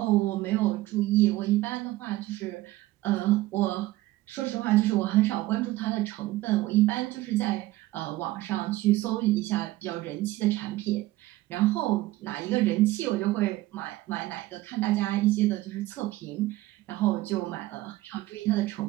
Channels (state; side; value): quieter; left; 17.2 dB